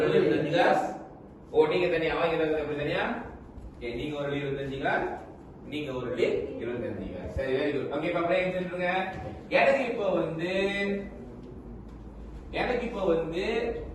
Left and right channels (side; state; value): both; identical; correlation 1.00